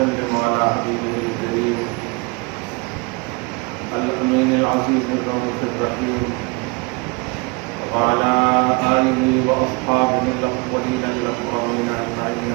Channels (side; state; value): left; quieter; 29.8 dB